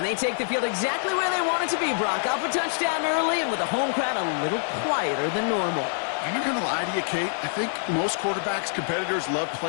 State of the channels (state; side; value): silent; right; digital silence